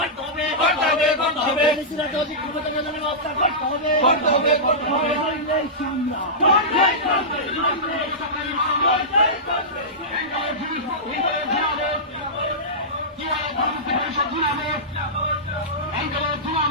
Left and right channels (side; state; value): both; normal; correlation -0.15